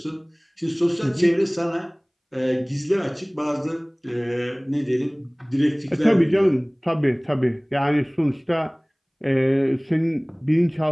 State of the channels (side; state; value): both; identical; correlation 1.00